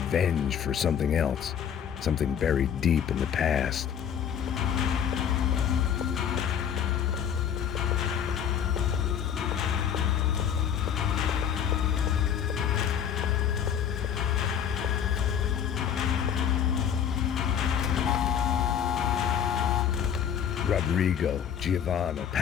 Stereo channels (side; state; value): right; quieter; 8.6 dB